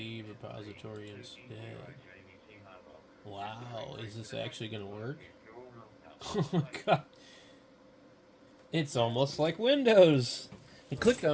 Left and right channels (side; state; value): both; identical; correlation 1.00